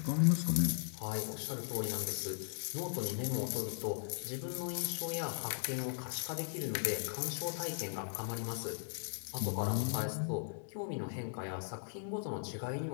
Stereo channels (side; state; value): right; silent; digital silence